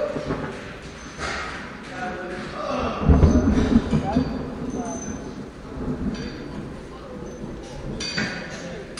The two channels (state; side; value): identical; both; correlation 1.00